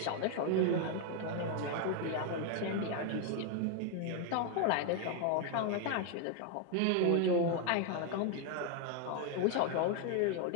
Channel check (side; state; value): both; different; correlation 0.01